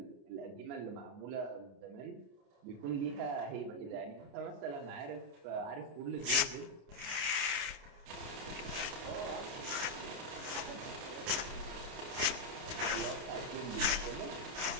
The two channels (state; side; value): late; left; 29 ms